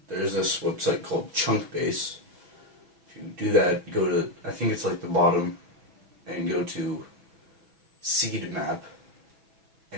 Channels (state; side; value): late; left; 6.1 ms